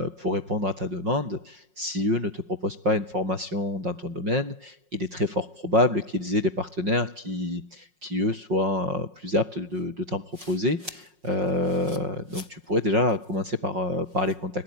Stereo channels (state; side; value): late; left; 5.5 ms